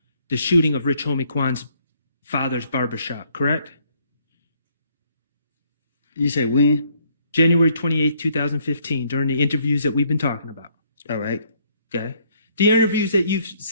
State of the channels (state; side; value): inverted; both; correlation -0.65